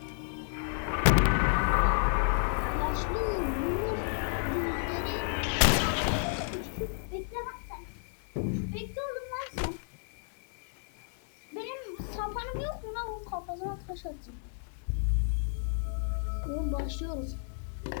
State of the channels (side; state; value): right; silent; 57 dB below the other